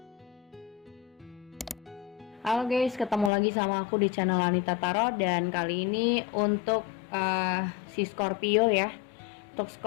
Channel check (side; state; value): right; drops out; at 3.3 s